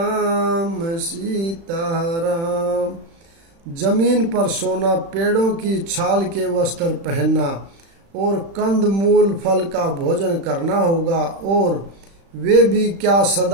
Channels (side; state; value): left; late; 36 ms